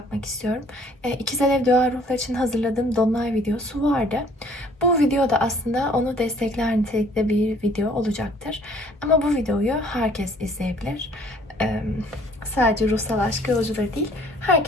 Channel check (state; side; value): normal; both; correlation 0.57